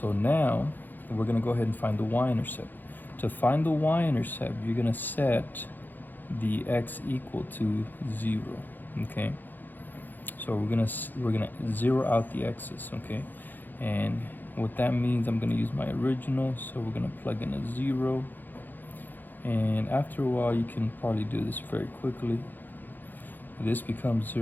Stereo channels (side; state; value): right; late; 0.088 ms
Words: now we're going to go ahead and find the y-intercept. To find the y-intercept, you're going to set the x equal to 0. Okay, so we're gonna zero out the x's. Okay, and what that means, I'm going to use my original, so we're going to plug in a 0, and after a while you can probably do this very quickly. This becomes